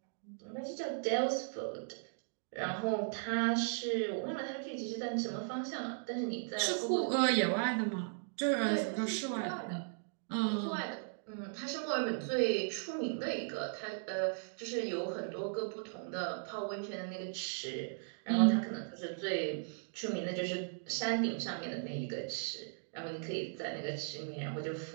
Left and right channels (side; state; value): left; silent; digital silence